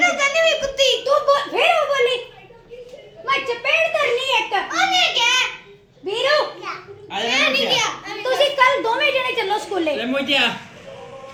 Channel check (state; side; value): identical; both; correlation 1.00